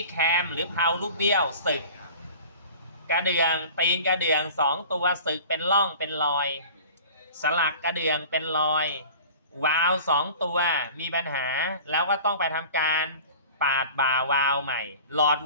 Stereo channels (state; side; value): inverted; both; correlation -0.41